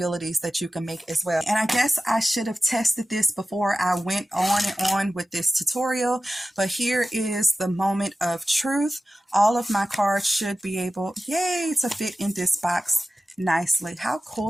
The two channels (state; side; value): normal; both; correlation 0.95